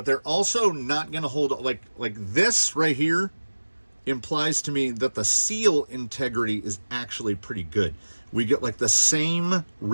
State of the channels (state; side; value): inverted; both; correlation -1.00